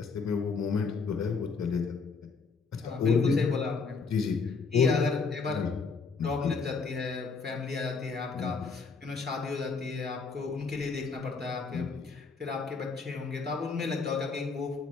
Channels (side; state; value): right; quieter; 4.8 dB